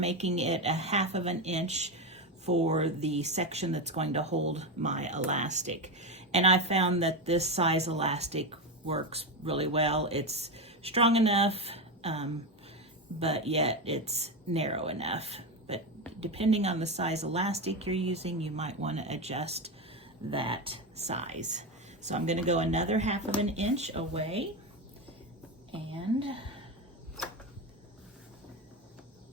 it a 1/2 inch for the section that's going to hold my elastic. And I found that this size elastic works really well. It's strong enough, but yet it's narrow enough. But depending on the size elastic you're using, you might want to adjust that size. So I'm going to go another 1/2 inch away, and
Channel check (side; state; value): both; normal; correlation 0.14